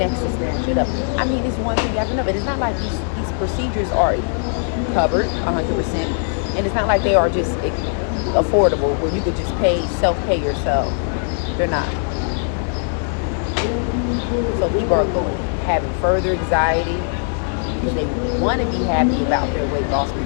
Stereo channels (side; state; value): right; silent; 63 dB below the other